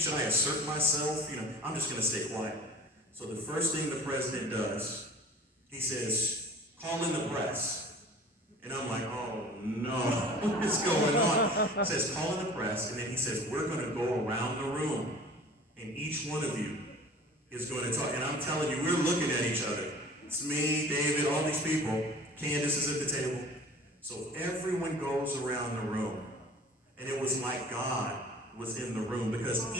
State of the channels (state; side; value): normal; both; correlation 0.44